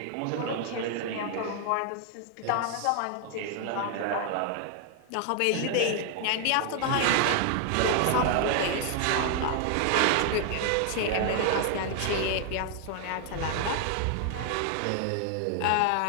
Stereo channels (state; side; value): different; both; correlation 0.00